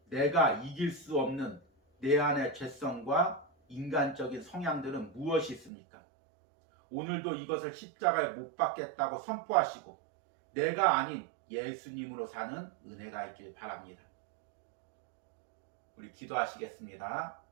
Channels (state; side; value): drops out; left; at 5.7 s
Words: 내가 이길 수 없는 내 안의 죄성과 인간적인 성향들은 무엇이 있습니까? 오늘도 이것을 십자가에 못 박겠다고 선포하시고 내가 아닌 예수님으로 사는 은혜가 있길 바랍니다. 우리 기도하시겠습니다.